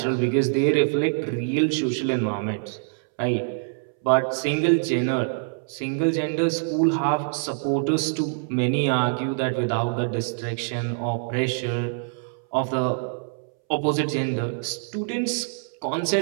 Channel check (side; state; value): left; silent; 62 dB below the other